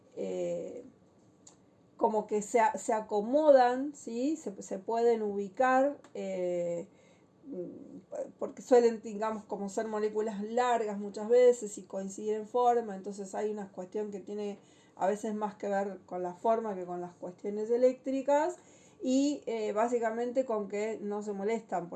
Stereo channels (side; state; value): both; identical; correlation 1.00